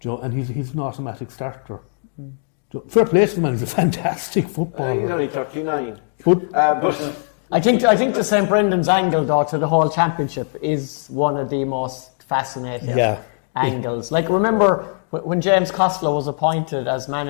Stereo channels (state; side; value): silent; right; digital silence